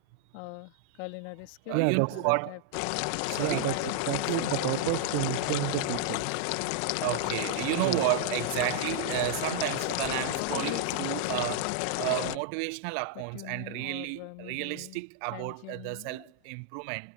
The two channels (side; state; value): both; different; correlation -0.01